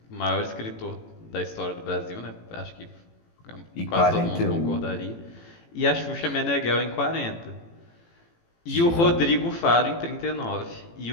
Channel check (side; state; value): right; late; 18 ms